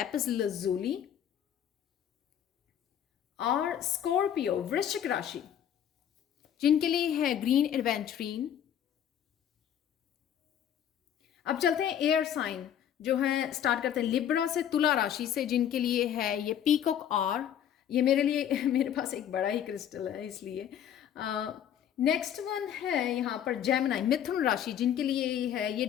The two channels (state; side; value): quieter; right; 9.8 dB